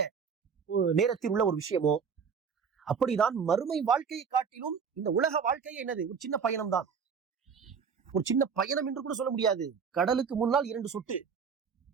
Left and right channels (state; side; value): quieter; left; 6.3 dB